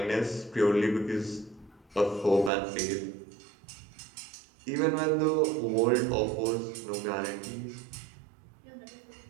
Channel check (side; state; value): left; drops out; at 2.5 s